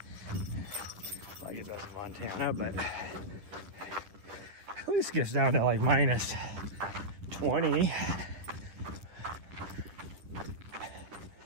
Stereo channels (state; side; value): late; left; 10 ms